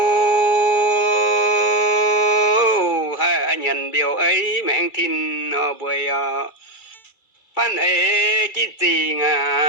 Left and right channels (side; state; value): right; late; 2.3 ms